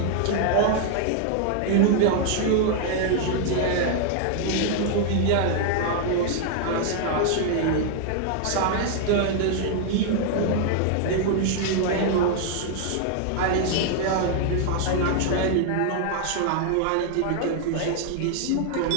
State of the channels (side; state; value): both; different; correlation 0.00